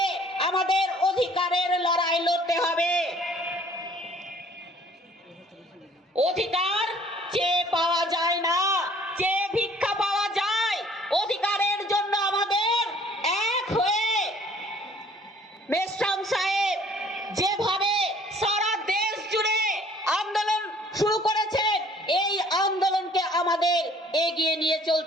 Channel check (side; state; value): both; normal; correlation 0.56